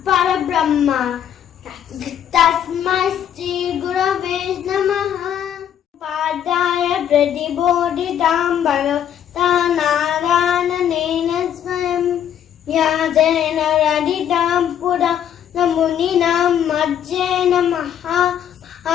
పరబ్రహ్మ తస్మై శ్రీ గురవే నమః. పాదాయ ప్రతిబోధితాం భగవతా నారాయణేన స్వయం వ్యాసేన రచితాం పురాణమునినాం మధ్యేన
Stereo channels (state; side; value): quieter; right; 9.6 dB